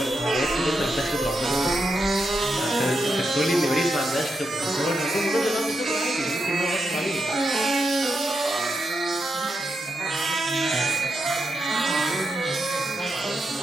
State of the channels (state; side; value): normal; both; correlation 0.85